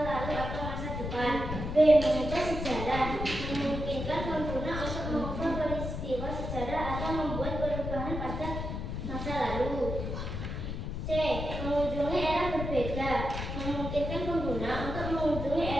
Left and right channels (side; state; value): left; noise; rumble, 4 dB below the sound